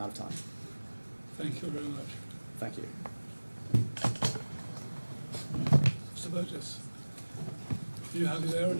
of time. Thank you very much. Thank you. Mr. Burgess, are you happy there or do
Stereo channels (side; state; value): both; inverted; correlation -1.00